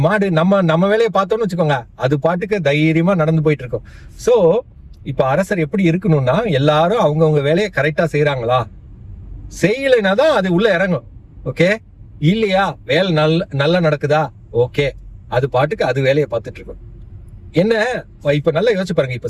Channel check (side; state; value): both; identical; correlation 1.00